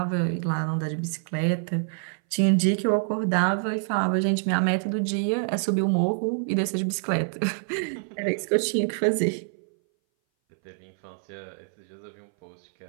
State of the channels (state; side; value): silent; left; 59 dB below the other